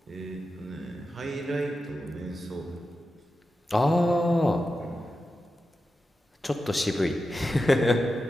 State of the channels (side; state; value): both; normal; correlation 0.91